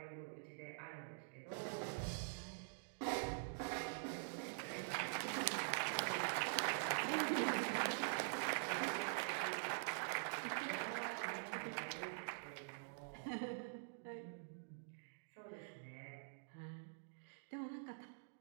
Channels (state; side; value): silent; left; digital silence